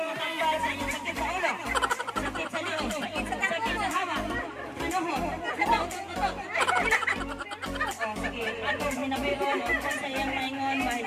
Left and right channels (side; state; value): both; identical; correlation 1.00